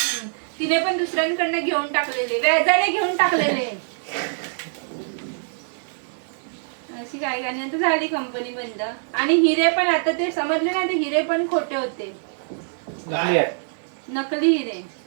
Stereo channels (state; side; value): silent; left; digital silence